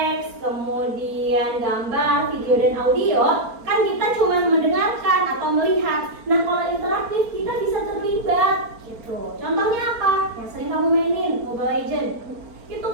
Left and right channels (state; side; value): late; left; 4.4 ms